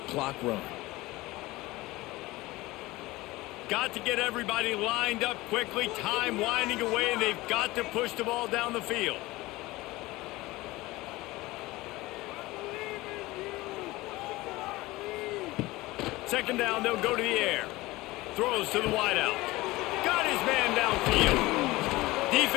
clock run. Got to get everybody lined up quickly. Time winding away, and they've got to push the ball down the field. Second down, they'll go to the air. Throws to the wideout. Got his man downfield.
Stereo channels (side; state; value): right; quieter; 19.8 dB